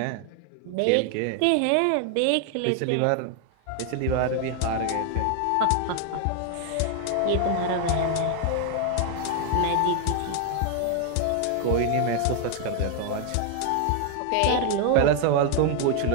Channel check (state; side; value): different; both; correlation 0.00